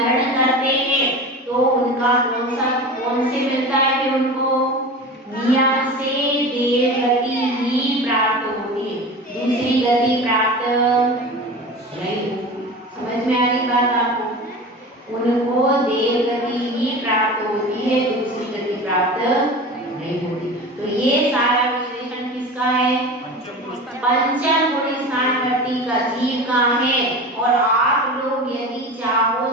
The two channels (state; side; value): normal; both; correlation 0.32